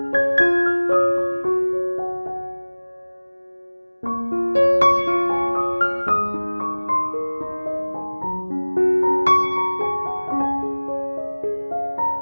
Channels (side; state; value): both; inverted; correlation -1.00